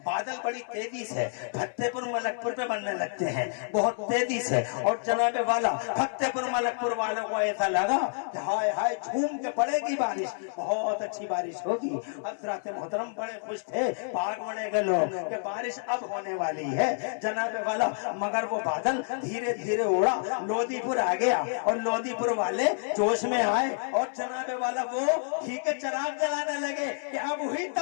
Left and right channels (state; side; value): silent; right; 55 dB below the other